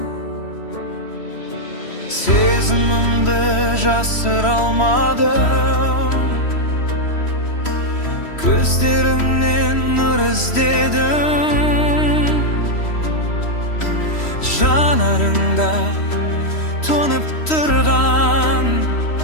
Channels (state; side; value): late; right; 3.1 ms